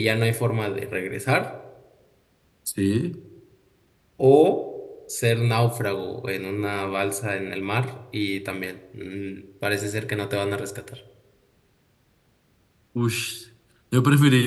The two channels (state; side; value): identical; both; correlation 1.00